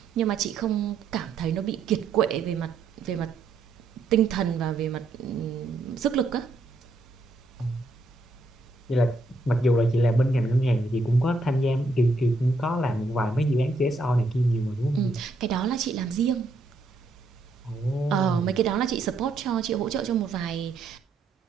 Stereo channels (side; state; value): left; quieter; 3.1 dB